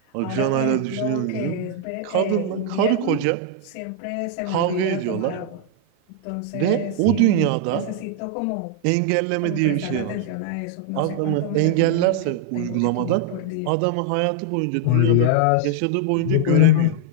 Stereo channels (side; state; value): both; different; correlation 0.00